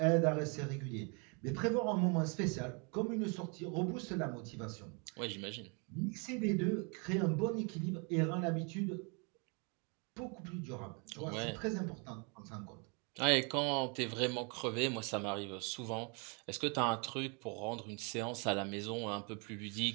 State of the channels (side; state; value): left; quieter; 34.5 dB